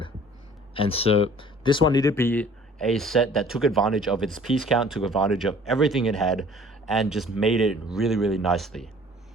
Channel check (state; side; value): normal; both; correlation 0.51